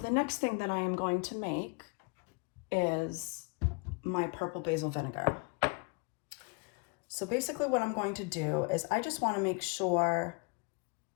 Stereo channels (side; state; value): right; quieter; 31.4 dB